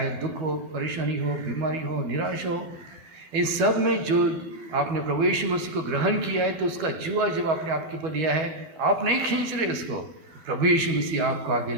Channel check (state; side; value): late; left; 12 ms